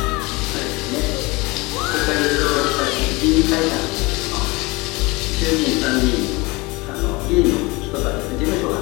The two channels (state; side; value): quieter; right; 24.3 dB